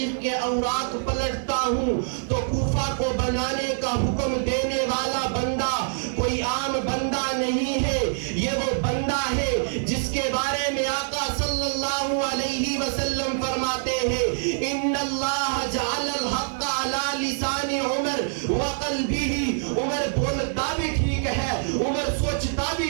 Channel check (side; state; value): left; silent; digital silence